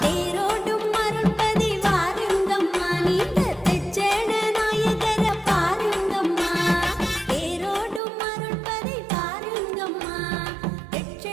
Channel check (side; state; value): left; drops out; at 8.0 s